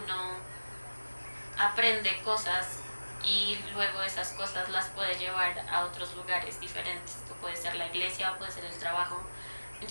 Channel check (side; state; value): both; inverted; correlation -1.00